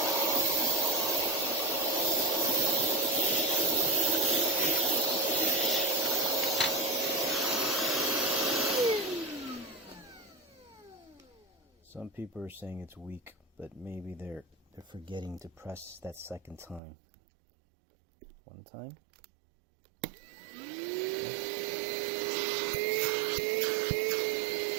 Some people are saying it's weak, but maybe they're forgetting to press that second time. One time.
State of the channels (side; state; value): left; drops out; at 16.8 s